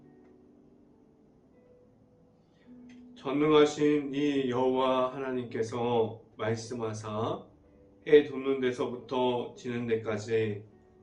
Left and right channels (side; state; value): both; identical; correlation 1.00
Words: 전능하신 이 여호와 하나님께서 말씀하사 해 돋는 데서부터 지는 데까지